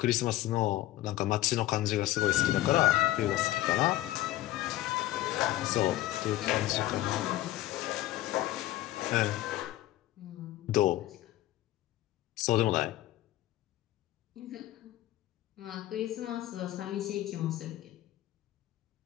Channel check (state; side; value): quieter; right; 15.4 dB